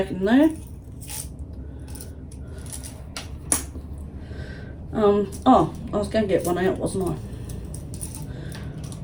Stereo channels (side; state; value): both; identical; correlation 1.00